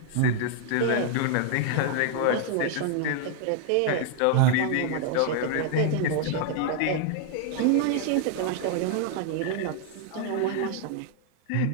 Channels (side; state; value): both; different; correlation 0.00